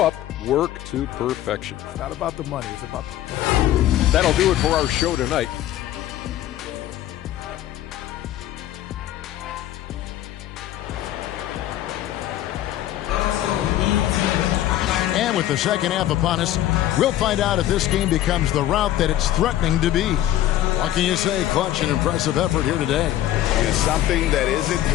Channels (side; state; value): right; quieter; 13.2 dB